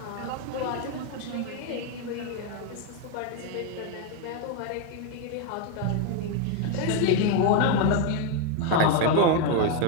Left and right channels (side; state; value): both; different; correlation 0.01